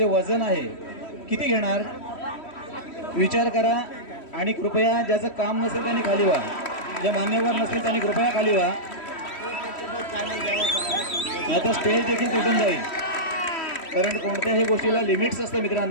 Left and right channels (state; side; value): late; right; 3.1 ms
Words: वजन आहे, किती घेणार विचार करा. आणि कृपया ज्याचं काम नसेल त्यांनी खाली व्हा, जे मान्यवर नसेल त्यांनी कृपया खाली व्हा, नाहीतर स्टेज देखील तुटून जाईल. कारण कोणत्याही गोष्टीला लिमिट्स असतं